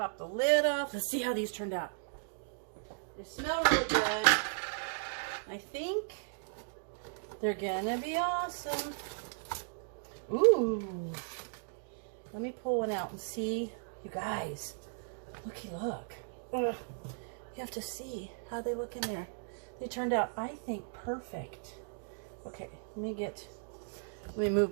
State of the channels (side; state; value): left; silent; digital silence